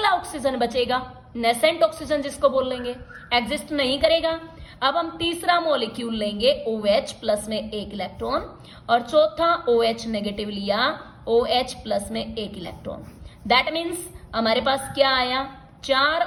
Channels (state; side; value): identical; both; correlation 1.00